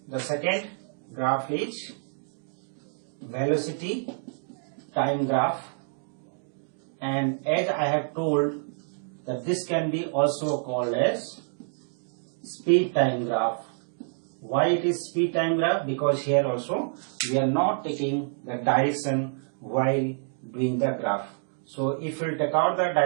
The second graph is velocity time graph, and as I have told that this can be also called as speed time graph. Why it is speed time graph? Because here also we are not taking the direction while doing the graph. So if we take out the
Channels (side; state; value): left; silent; digital silence